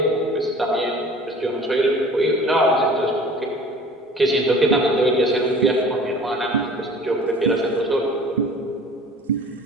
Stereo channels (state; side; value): normal; both; correlation 0.46